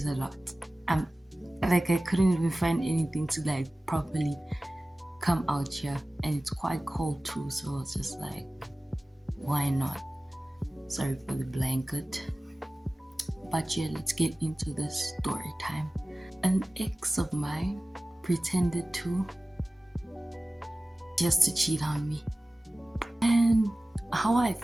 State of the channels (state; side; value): normal; both; correlation 0.97